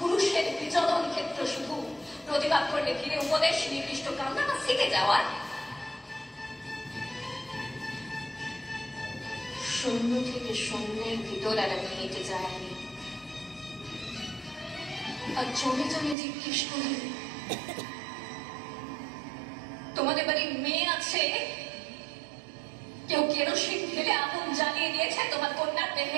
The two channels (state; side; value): drops out; left; at 16.2 s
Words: বিচরণ ক্ষেত্র শুধু। প্রতিবাদ করলে ভিড়ে উপদেশ, নির্দিষ্ট কামনা বা শিখে যাওয়ার। শূন্য থেকে শূন্যের ভিতর আর আমি হেঁটে যাইনি। আর জমে জমে জিজ্ঞেস করি, তোমাদের বাড়ির মেয়ে আছে? কেউ কেরোসিন ঢেলে আগুন জ্বালিয়ে দিয়েছে তোমার কন্যার